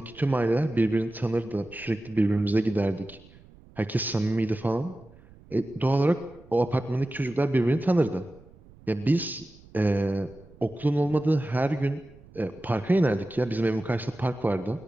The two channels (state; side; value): noise; right; rumble, 24 dB below the sound